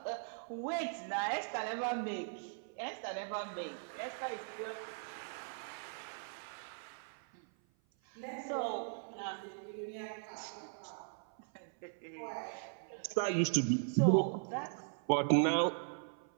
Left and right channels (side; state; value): left; silent; 52 dB below the other